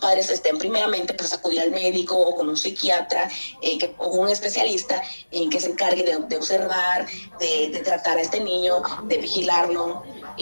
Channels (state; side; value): inverted; both; correlation -1.00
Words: primeramente, pues acudir al médico o con un psiquiatra o un especialista que se encargue de observar, de tratar a este niño, de vigilarlo,